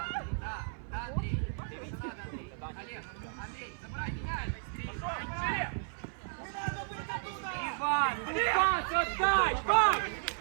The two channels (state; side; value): silent; left; 55 dB below the other